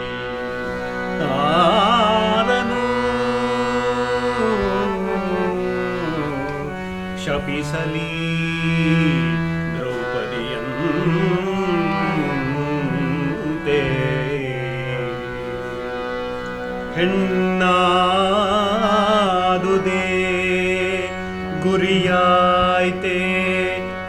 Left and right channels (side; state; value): both; identical; correlation 1.00